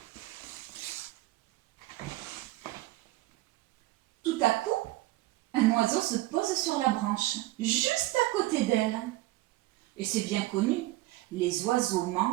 Tout à coup, un oiseau se pose sur la branche, juste à côté d'elle. Et c'est bien connu, les oiseaux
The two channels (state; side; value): quieter; left; 18.1 dB